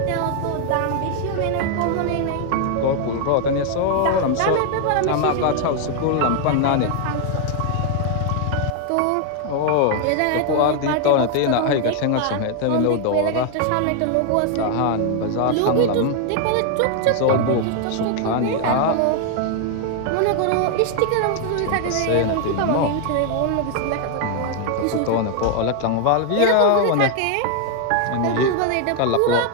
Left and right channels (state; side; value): different; both; correlation 0.00